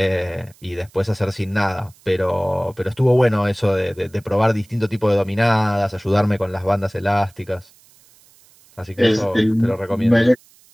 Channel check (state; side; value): noise; right; hiss, 29 dB below the sound